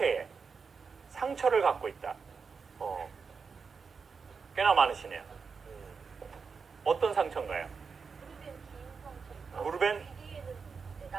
상처를 갖고 있다. 꽤나 많으시네요. 어떤 상처인가요? 무릎엔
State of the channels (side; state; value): left; quieter; 5.4 dB